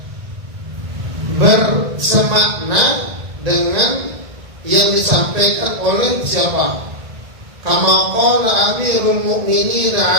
bersemakna dengan yang disampaikan oleh siapa? Kama qala Amirul Mukminin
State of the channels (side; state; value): left; late; 1.9 ms